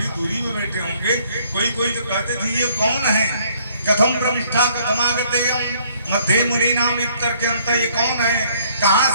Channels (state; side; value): inverted; both; correlation -0.63